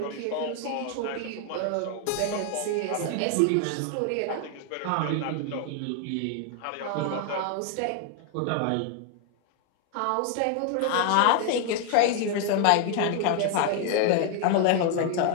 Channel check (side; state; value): both; different; correlation 0.00